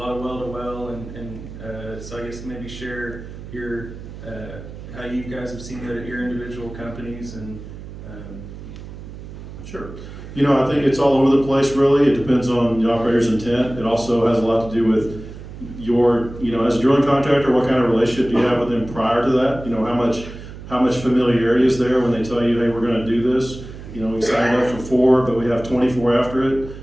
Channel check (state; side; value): noise; right; hum, 13 dB below the sound